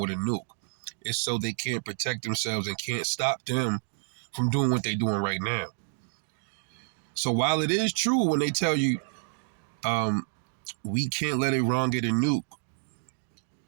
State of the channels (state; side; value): silent; left; digital silence